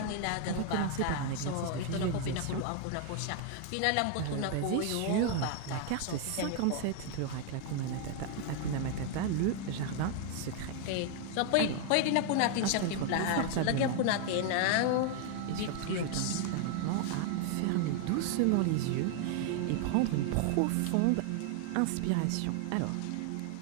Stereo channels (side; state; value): both; different; correlation 0.00